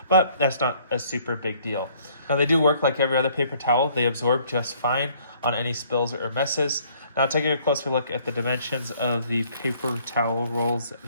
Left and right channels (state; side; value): inverted; both; correlation -0.61